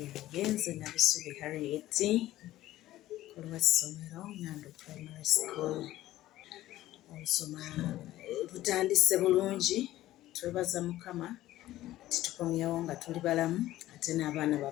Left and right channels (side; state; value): right; quieter; 15.0 dB